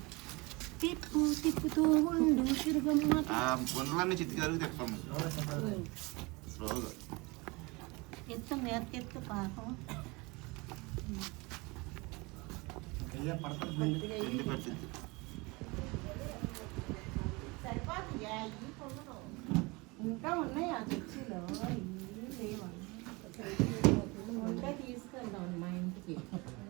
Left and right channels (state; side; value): quieter; left; 25.6 dB